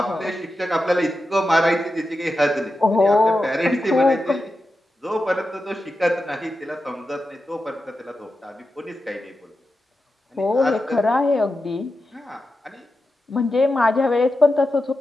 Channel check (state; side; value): normal; both; correlation 0.90